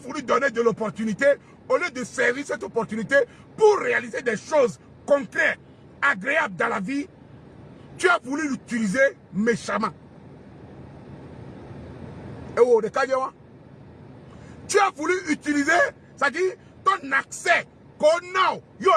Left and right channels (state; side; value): identical; both; correlation 1.00